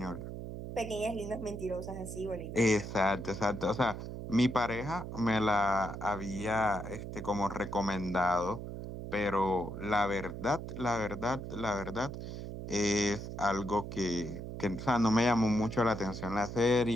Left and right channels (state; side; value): noise; right; hum, 8 dB below the sound